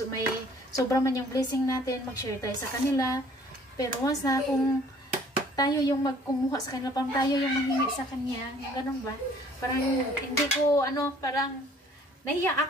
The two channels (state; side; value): normal; both; correlation 0.56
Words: may sobra man yung blessing natin, mag-share tayo sa kanila. Pero once na kung tayo yung magkumuha sa kanila, parang tayo yung manghingi sa kanya, yung ganun ba? Parang hindi ko, parang nahiya